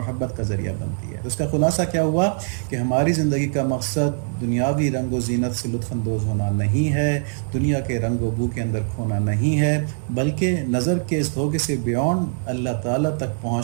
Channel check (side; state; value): left; silent; 64 dB below the other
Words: کا ذریعہ بنتی ہے۔ تو اس کا خلاصہ کیا ہوا کہ ہماری زندگی کا مقصد دنیاوی رنگ و زینت سے لطف اندوز ہونا نہیں ہے، دنیا کے رنگ و بو کے اندر کھونا نہیں ہے، بلکہ نظر کے اس دھوکے سے بیونڈ اللہ تعالیٰ تک